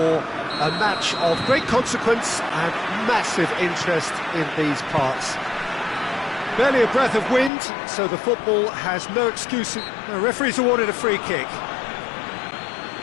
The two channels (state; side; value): drops out; right; at 7.5 s